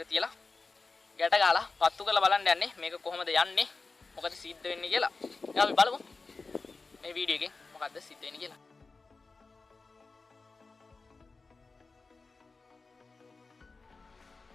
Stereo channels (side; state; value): right; quieter; 4.0 dB